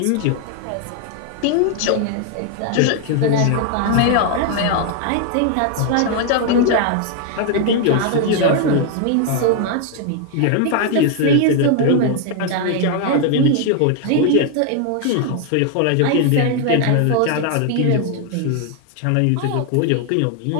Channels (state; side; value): different; both; correlation 0.00